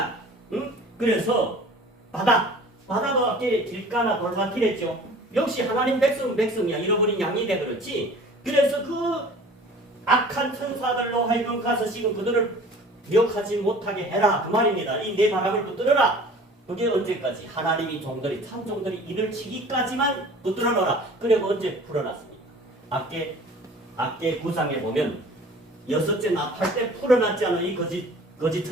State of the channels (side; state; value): both; normal; correlation 0.46